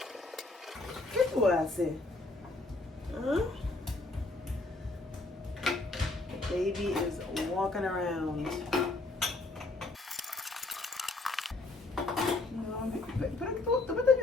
¿Qué tú haces? Huh? Baby is walking around. No, pero tú me estás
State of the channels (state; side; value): quieter; right; 3.1 dB